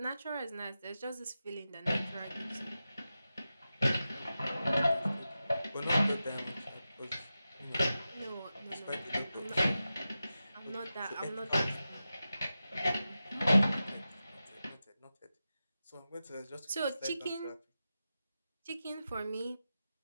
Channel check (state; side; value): inverted; both; correlation -0.92